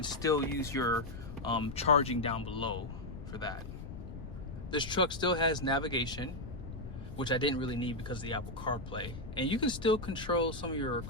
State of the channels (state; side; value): noise; left; rumble, 10 dB below the sound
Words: still use your charging down below for that. This truck still has navigation, which I didn't really need because of the Apple CarPlay. And you can still control some of your